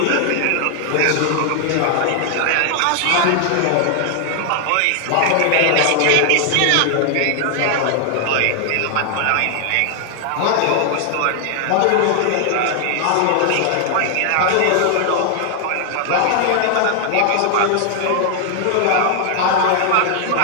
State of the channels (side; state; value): both; different; correlation 0.00